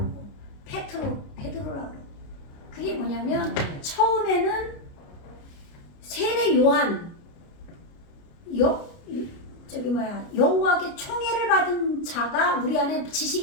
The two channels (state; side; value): late; right; 29 ms